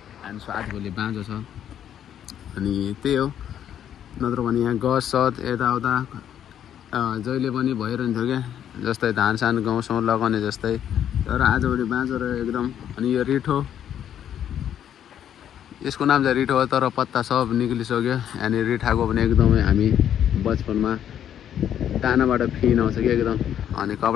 एन्ड सो आजभोलि बाँझो छ अनि त्यही हो नत्र भने यहाँ गस सत यताउता जहिले पनि भइरहन्थ्यो क्या जस्तै धान सान गाउँसँग लगाउने जस्तै तर आजभोलि बाँझो रह्यो एकदम अनि यो रिठो यसको नाम चाहिँ रिठो हो तर पत्ता सब निक्लिसक्यो अनि रिठाको पनि एकदमै हामी बचपनमा दानाबाट फिन आउँछ कि एकदम अनि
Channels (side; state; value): right; quieter; 9.9 dB